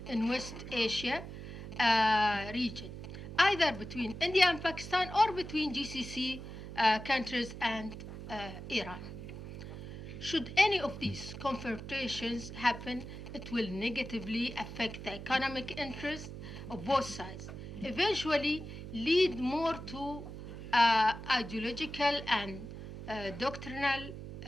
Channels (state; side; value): noise; right; hum, 10 dB below the sound